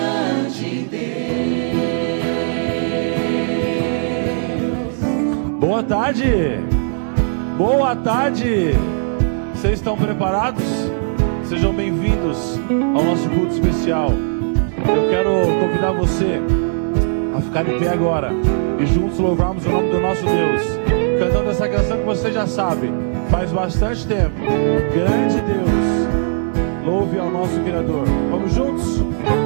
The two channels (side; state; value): left; silent; digital silence